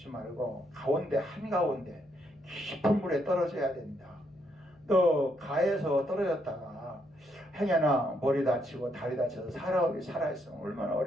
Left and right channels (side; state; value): left; noise; hum, 29 dB below the sound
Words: 말고 가운데 한가운데 깊은 물에 떨어져야 된다. 너 가해에서 떨어졌다가 행여나 머리 다치고 다리 다쳐서 살아있으면 얼마나